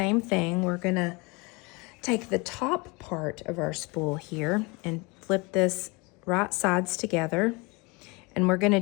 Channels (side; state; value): right; quieter; 27.1 dB